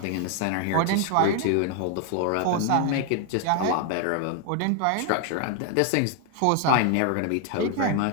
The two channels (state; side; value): different; both; correlation 0.01